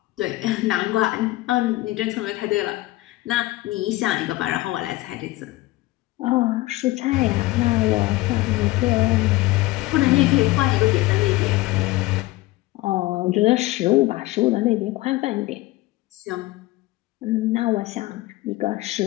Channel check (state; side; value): quieter; right; 18.9 dB